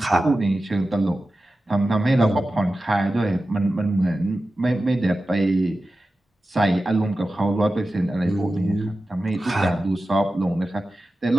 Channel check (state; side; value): normal; both; correlation 0.94